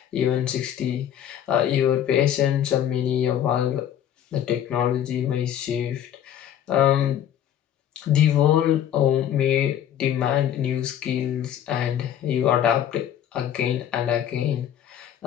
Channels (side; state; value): right; quieter; 10.2 dB